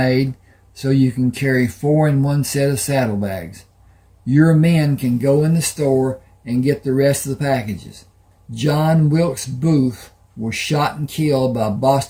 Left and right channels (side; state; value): both; identical; correlation 1.00